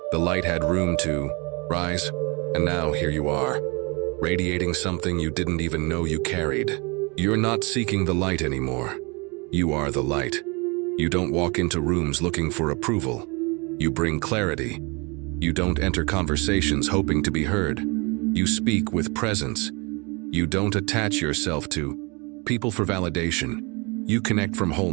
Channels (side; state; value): left; quieter; 29.4 dB